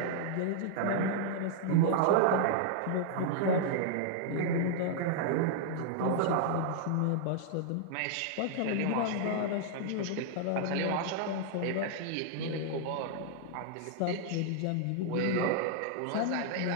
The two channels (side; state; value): both; different; correlation -0.01